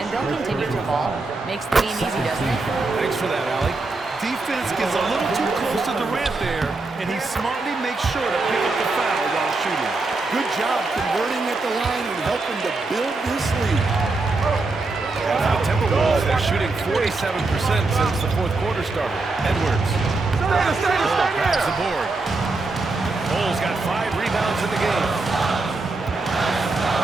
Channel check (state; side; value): quieter; left; 3.4 dB